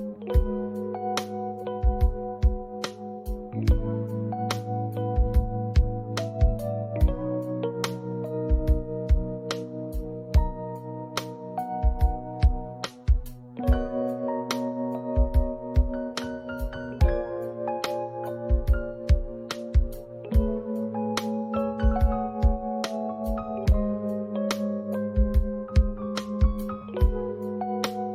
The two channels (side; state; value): both; identical; correlation 1.00